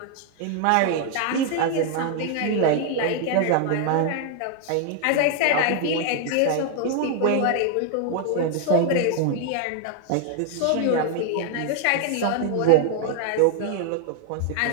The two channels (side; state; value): both; different; correlation 0.00